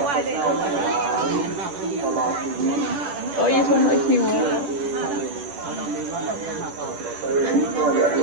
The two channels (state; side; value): late; left; 10 ms